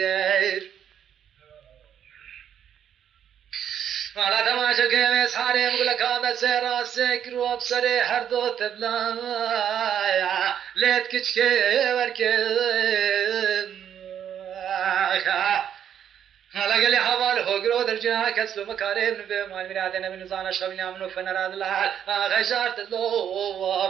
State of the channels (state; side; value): quieter; left; 9.3 dB